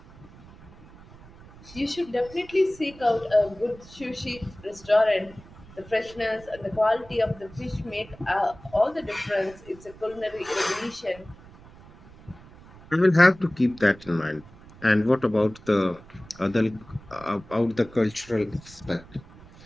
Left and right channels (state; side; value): noise; right; rumble, 21 dB below the sound